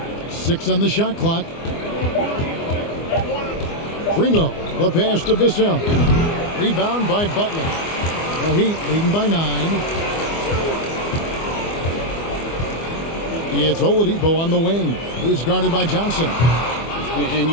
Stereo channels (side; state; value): right; late; 24 ms